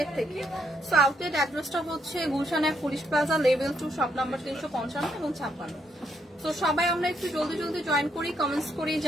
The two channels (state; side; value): normal; both; correlation 0.75